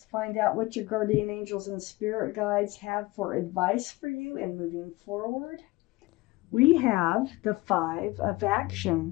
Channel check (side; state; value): right; quieter; 21.2 dB